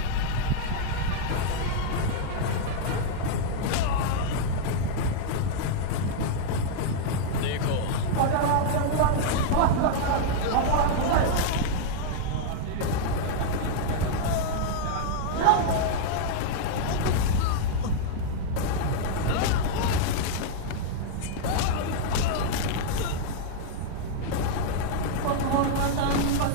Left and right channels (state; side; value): different; both; correlation -0.01